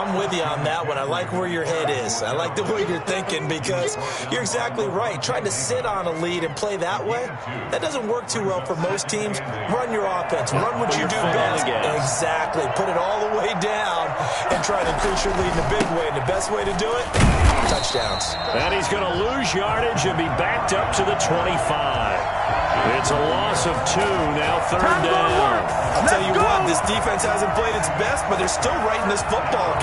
with you on that one. I like where your head is. I like the way you're thinking because you're exactly right. Trying to sit on a lead and play that way, that doesn't work too well for most teams. Run your offense. Run what you do best. Exactly. Put it all the way down and try to increase your lead in a big way. And the best way to do it, touchdowns. And he's going to lose yardage and be backed up to the 25. It's a loss of 2, now 3rd down. I'll tell you what, this defense hasn't played its best, but they're still right in this football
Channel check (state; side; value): identical; both; correlation 1.00